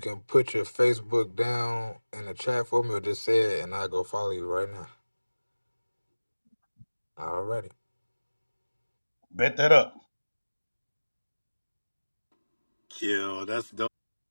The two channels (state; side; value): inverted; both; correlation -1.00